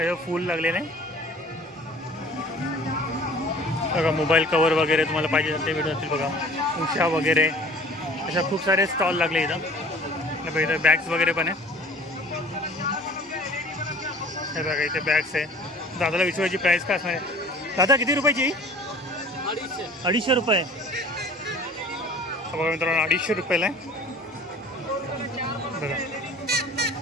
फूल लागलेलं आहे. बघा मोबाईल कवर वगैरे तुम्हाला पाहिजे ते भेटून जातील. बघा उषा वगैरे अशा खूप सारे स्टॉल लागले इथं. बघा इथं बॅग्स वगैरे पण आहे. हे बघा इथे बॅग्स आहे. दादाला विचारायची प्राईस काय असणार आहे? दादा किती रुपयाची? 250 रुपये. बघा मित्रांनो 250 रुपयाला आहे. बघा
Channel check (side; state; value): both; normal; correlation 0.47